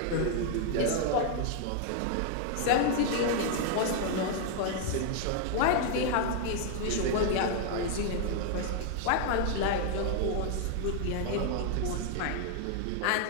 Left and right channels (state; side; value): different; both; correlation 0.00